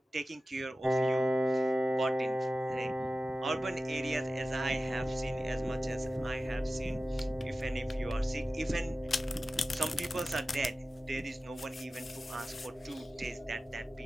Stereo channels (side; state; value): both; normal; correlation 0.94